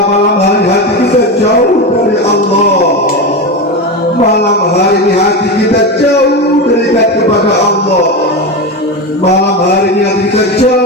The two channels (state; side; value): normal; both; correlation 0.18